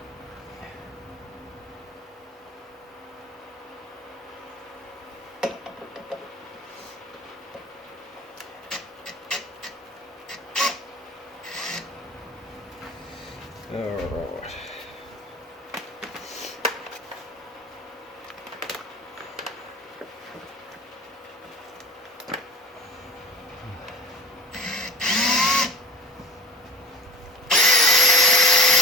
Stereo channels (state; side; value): normal; both; correlation 0.42